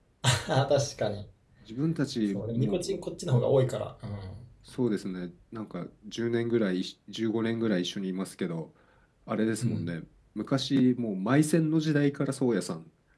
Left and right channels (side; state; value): both; identical; correlation 1.00